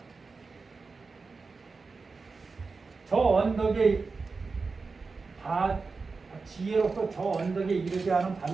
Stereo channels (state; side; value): quieter; left; 4.3 dB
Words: 저 언덕에 지혜로서 저 언덕에 이르지 않은